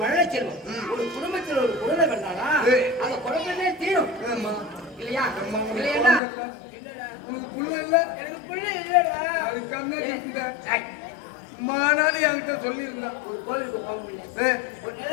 மழலை செல்வம். ஒரு குடும்பத்தில் ஒரு குழந்தை பண்ணாடா அந்த குழந்தையே தீரும் இல்லையா? இல்லையா? உனக்கு புள்ள இல்ல? எனக்கு புள்ள இல்லடா. அது கண்ணா மானாலி என்கிட்ட சொல்லியிருந்தா. ஒரு கோவிலுக்கு போக முடியல, ஒரு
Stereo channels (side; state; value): right; drops out; at 6.2 s